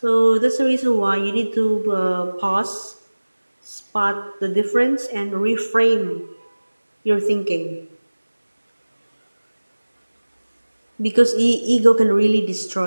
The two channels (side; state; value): both; inverted; correlation -1.00